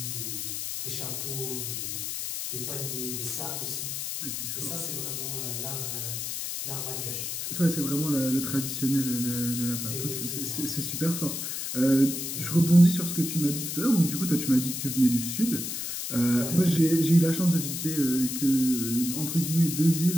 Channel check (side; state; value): left; noise; hiss, 4 dB below the sound